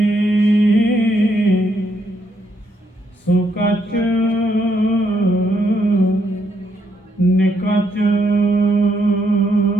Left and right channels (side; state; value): both; normal; correlation 0.75